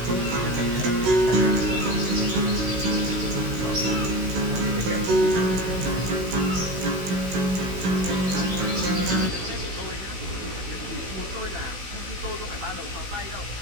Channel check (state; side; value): late; left; 16 ms